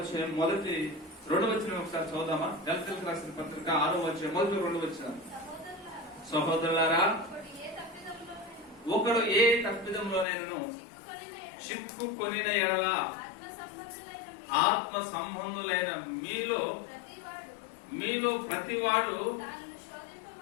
మొదటి 2వ వచనం ఒకసారి చదువుదామా? గలతీయులకు రాసిన పత్రిక 6వ అధ్యాయం మొదటి 2వ వచనం. సహోదరులారా, ఒకడు ఏ తప్పిదంలోనైనను చిక్కుకొనిన ఎడల ఆత్మ సంబంధులైన మీలో ప్రతివాడు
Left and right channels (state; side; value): drops out; right; at 10.2 s